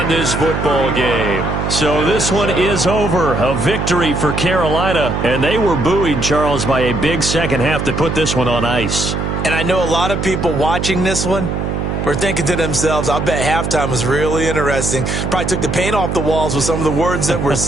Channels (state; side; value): noise; right; hum, 2 dB below the sound